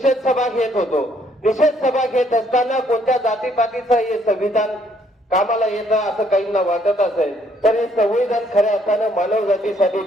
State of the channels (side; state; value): both; normal; correlation 0.67